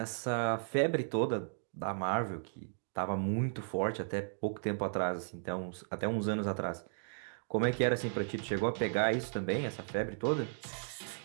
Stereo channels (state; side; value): silent; left; digital silence